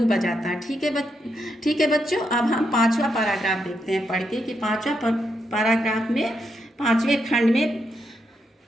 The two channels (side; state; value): both; normal; correlation 0.81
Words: बजाता। ठीक है बच्चों, अब हम 5वां पैराग्राफ देखते हैं पढ़ के कि 5वां पैराग्राफ में 5वें खंड में